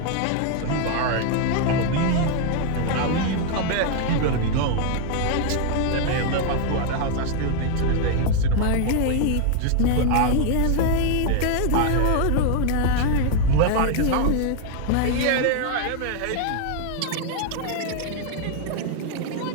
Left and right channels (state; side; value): different; both; correlation 0.00